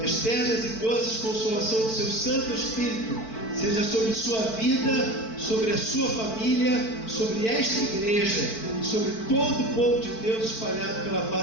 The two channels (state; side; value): late; right; 4.5 ms